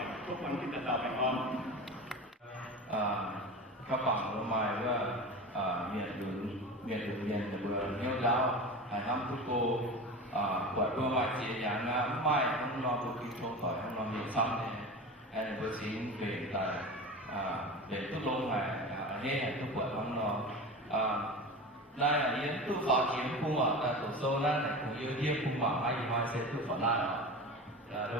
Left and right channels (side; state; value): both; normal; correlation 0.30